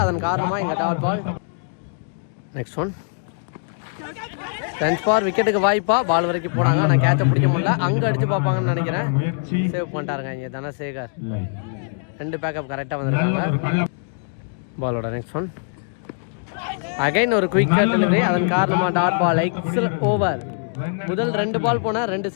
அதன் காரணமாக இங்கே dot ball. Next one chance for, விக்கெட்டுக்கு வாய்ப்பா, பால் வரைக்கும் போனாங்க, ஆனால் கேட்சை பிடிக்க முடியல. அங்கே அடித்து பார்ப்பாங்கன்னு நினைக்கிறேன், சேவ் பண்ணிட்டாருங்க இங்கே தனசேகர். 2 பேக்கப் கரெக்டாக வந்திருக்காங்க. பாலோட நெக்ஸ்ட் ஒன் அகைன் ஒரு குயிக் டெலிவரி, அதன் காரணமாக டாட் பால். Excellent over. முதல் 2 பால் போனால் 2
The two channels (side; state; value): right; silent; digital silence